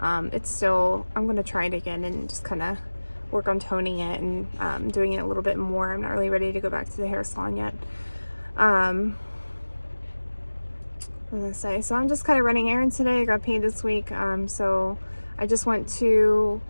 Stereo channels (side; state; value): both; inverted; correlation -1.00